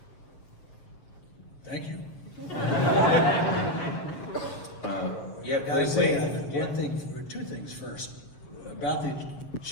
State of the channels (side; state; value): right; late; 7.2 ms